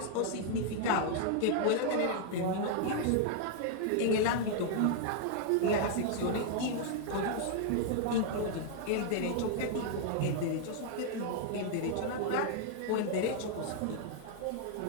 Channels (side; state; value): both; different; correlation -0.01